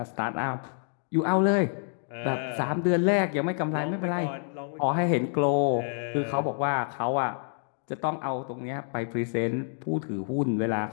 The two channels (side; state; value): right; silent; digital silence